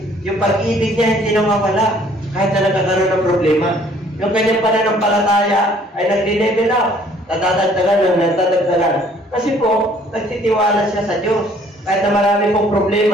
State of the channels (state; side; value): normal; both; correlation 0.59